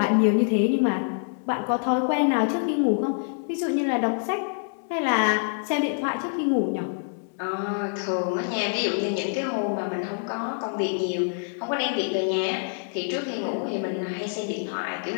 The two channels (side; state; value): right; silent; 61 dB below the other